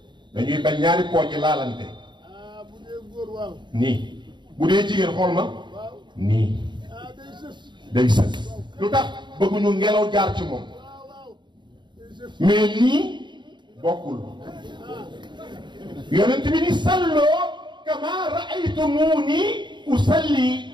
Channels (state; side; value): late; left; 0.22 ms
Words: dañuy bañ ñaari pooj laalante bu dee góor waaw nii bu dee jigéen xool ma nii day sës lu tax bëgguñu ngelaw jaar ci moom mais nii bokkul yonent bi ni salloo kama raaytumuni usalli